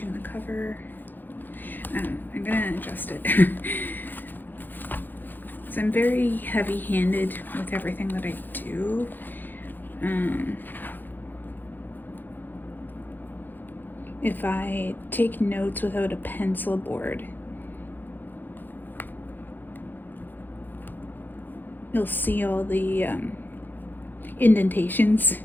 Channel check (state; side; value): late; right; 0.089 ms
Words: the cover. I don't know, I'm gonna adjust it. So I'm very heavy-handed with everything that I do. If I take notes without a pencil board, you'll see all the indentations